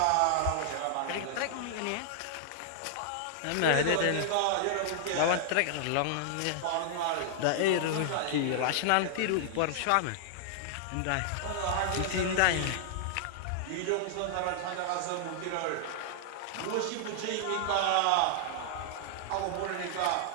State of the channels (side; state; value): both; different; correlation -0.01